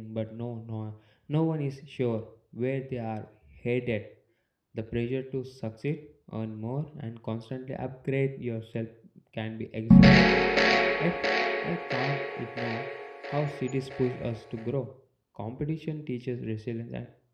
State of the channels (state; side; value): identical; both; correlation 1.00